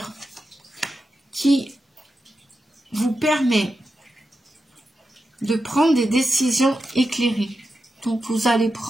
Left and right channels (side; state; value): both; normal; correlation 0.89